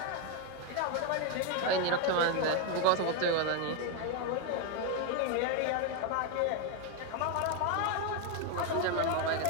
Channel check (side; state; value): both; different; correlation 0.01